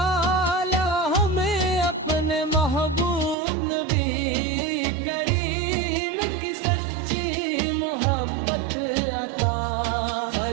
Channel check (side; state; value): left; drops out; at 3.4 s